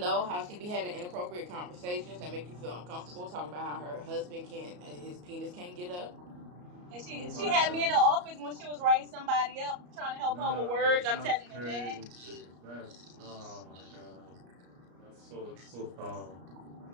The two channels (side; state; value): left; late; 34 ms